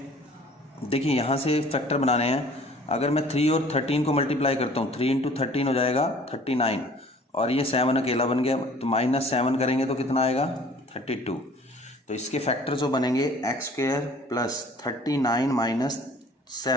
देखिए यहाँ से फैक्टर बनाने हैं। अगर मैं 3 और 13 को मल्टीप्लाई करता हूँ, 3 इंटू 13 हो जाएगा 39 और ये 7 अकेला बन गया, तो माइनस 7 करेंगे तो कितना आएगा 32। तो इसके फैक्टर जो बनेंगे एक्स स्क्वायर प्लस 39 माइनस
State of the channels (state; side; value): normal; both; correlation 0.51